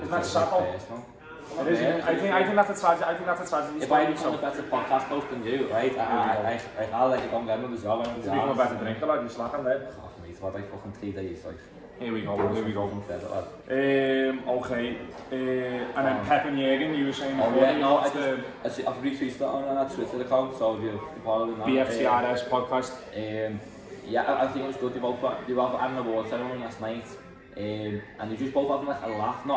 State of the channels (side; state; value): both; identical; correlation 1.00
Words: it's personal. It is. I think that's a tragedy. I think that's a tragedy. If I become a better podcast host than you, right? I'll let you go and get another job. To become a better drinker, lad, you're slacking there. Oh, mate, what like fucking 3 days, like. Here we go. Okay. And then Pep and Jürgen, you were saying before. Yeah, no, I've retweeted that on our Twitter account, so if you're following that. BFTRS podcast. Yeah, I think it was good. They both had an award ceremony last night, and they just both having like a laugh,